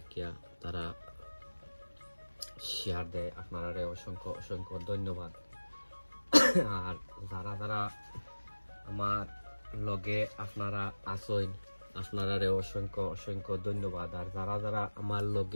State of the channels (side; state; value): both; inverted; correlation -1.00